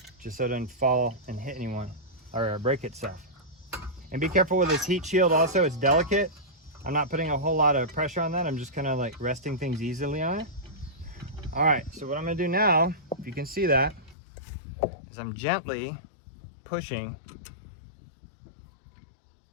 just so it doesn't fall and hit anyone or break itself. And be careful with this heat shield also, it's delicate. I'm not putting a whole lot of pressure on that. I'm just kind of like resting things easily on it. All right, so what I'm gonna do now, if you can see that, is I'm gently pushing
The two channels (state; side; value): drops out; right; at 14.2 s